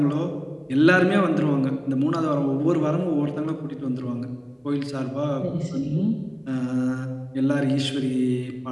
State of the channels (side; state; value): both; identical; correlation 1.00